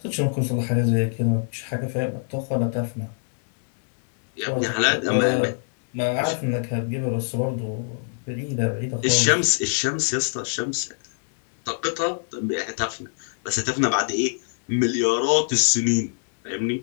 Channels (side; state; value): right; silent; digital silence